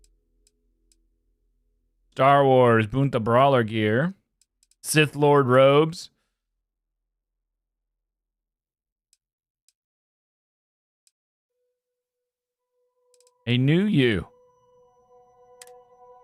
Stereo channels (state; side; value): identical; both; correlation 1.00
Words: Star Wars Bunta Brawler gear. Sith Lord robes. A new you.